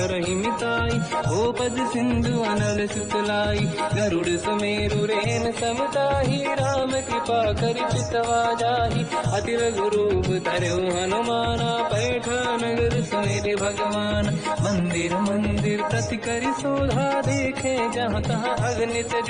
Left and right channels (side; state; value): both; identical; correlation 1.00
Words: मिताई, हो पद सिंधु अनल सुतलाई। गरुड़ सुमेरु रेन समताहि, राम कृपा करि चितवा जाहि। अति लघु रूप धरौ हनुमाना, पैठा नगर सुमिरि भगवान। मंदिर मंदिर प्रति करि शोधा, देखे जहाँ तहाँ अगणित